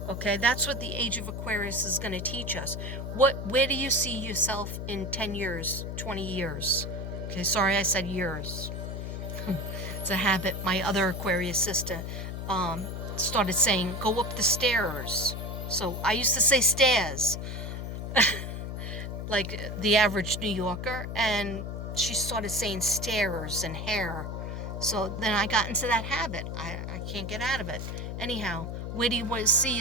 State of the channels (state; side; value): noise; left; hum, 5 dB below the sound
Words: Okay, that's what the Age of Aquarius is going to teach us. Where do you see yourself in 10 years, 20 years? Okay, sorry I said years. It's a habit. My other Aquarius sister started saying, go up the stairs. So I used to say stairs, like the average New Yorker, and she started saying stairs and hair. So then I got into that habit. I can't get out of it. Anyhow, where do you want to see